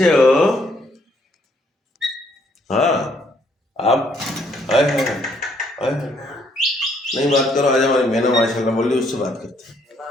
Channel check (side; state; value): both; normal; correlation 0.68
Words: हो? हाँ, आप आए हैं, आए हैं। नहीं बात करो, आज हमारी मैंने माशाल्लाह बोल ली, उससे बात करते हैं।